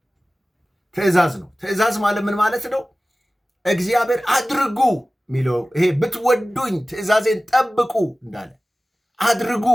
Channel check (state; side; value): normal; both; correlation 0.97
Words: ትእዛዝ ማለት ምን ማለት ነው? እግዚአብሔር አድርጉ የሚለው ይሄ ብትወዱኝ ትእዛዜን ጠብቁ እንዳለ አድርጉ